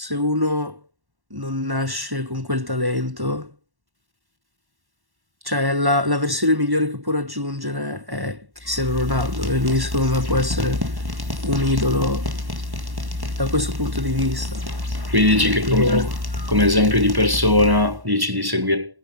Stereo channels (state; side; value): late; left; 1.1 ms